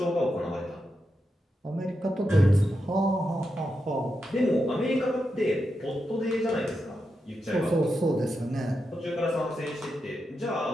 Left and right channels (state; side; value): normal; both; correlation 0.87